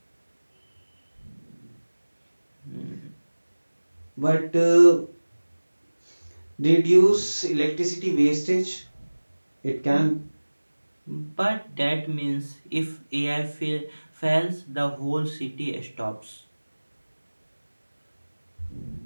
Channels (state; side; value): inverted; both; correlation -1.00